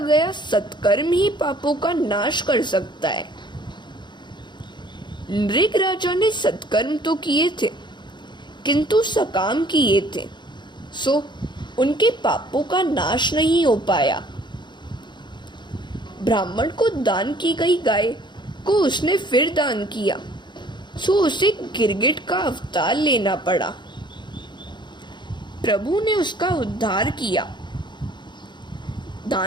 सत्कर्म ही पापों का नाश कर सकता है। नृग राजा ने सत्कर्म तो किए थे, किंतु सकाम किए थे, सो उनके पापों का नाश नहीं हो पाया। ब्राह्मण को दान की गई गाय को उसने फिर दान किया, सो उसे गिरगिट का अवतार लेना पड़ा। प्रभु ने उसका उद्धार किया।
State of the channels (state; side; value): late; right; 0.22 ms